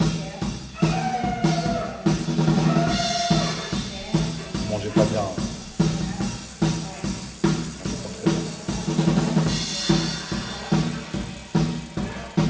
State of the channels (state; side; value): identical; both; correlation 1.00